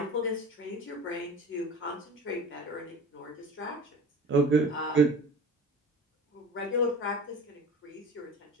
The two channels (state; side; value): normal; both; correlation 0.38